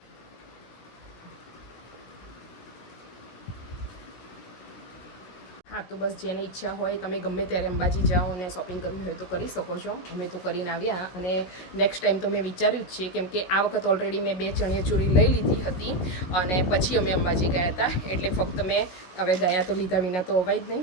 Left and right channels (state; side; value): late; right; 16 ms